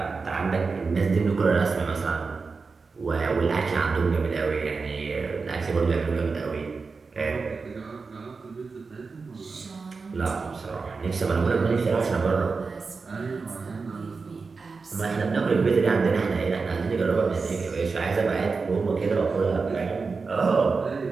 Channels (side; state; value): left; quieter; 4.5 dB